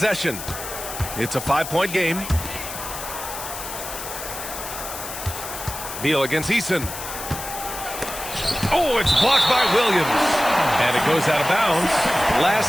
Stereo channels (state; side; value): noise; left; hiss, 9 dB below the sound